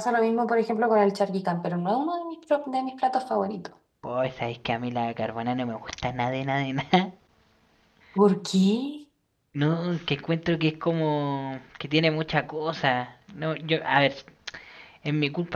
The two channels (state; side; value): identical; both; correlation 1.00